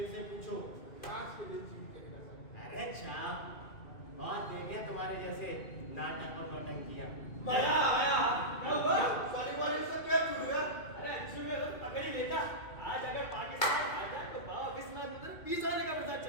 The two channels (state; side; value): late; right; 2.3 ms